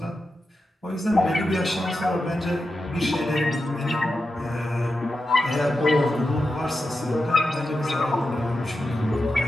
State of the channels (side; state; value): both; normal; correlation 0.89